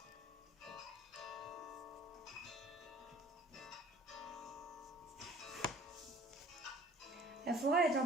La forêt est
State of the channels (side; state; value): both; normal; correlation 0.49